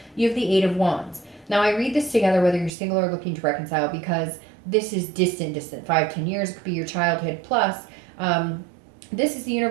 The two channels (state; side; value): drops out; left; at 2.7 s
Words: You have the 8 of Wands. Now I read this together whether you're single or looking to reconcile, because this is distant 5-10 years. It could be your childhood plus. This is the